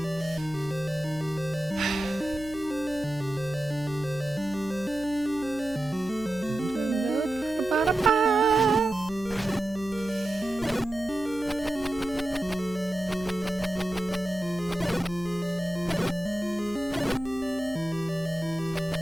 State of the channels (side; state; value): right; noise; hum, 17 dB below the sound